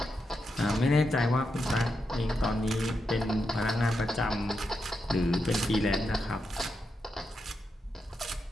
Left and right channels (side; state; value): both; normal; correlation 0.85